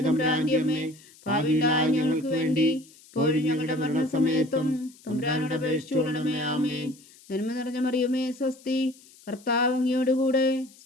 തമ്പുരാന്റെ അമ്മേ, പാപികളായ ഞങ്ങൾക്ക് വേണ്ടി ഇപ്പോഴും ഞങ്ങളുടെ മരണസമയത്തും തമ്പുരാനോട് അപേക്ഷിച്ചുകൊള്ളണമേ. ആമേൻ. നന്മ നിറഞ്ഞ മറിയമേ സ്വസ്തി, കർത്താവ് അങ്ങയോട് കൂടെ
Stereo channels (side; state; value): left; noise; hiss, 25 dB below the sound